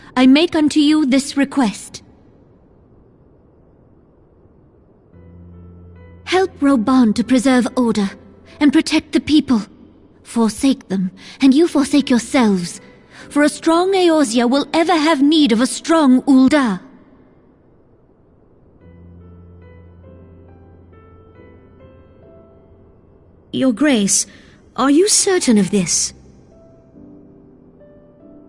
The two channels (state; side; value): identical; both; correlation 1.00